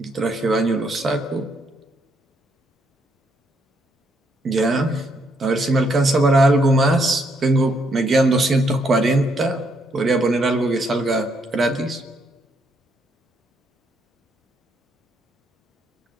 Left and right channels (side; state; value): both; normal; correlation 0.73